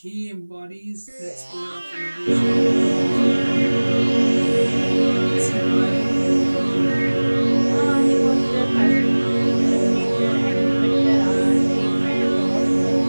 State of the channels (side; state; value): both; inverted; correlation -1.00